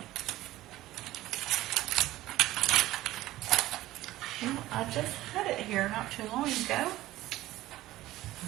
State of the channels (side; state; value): left; quieter; 16.0 dB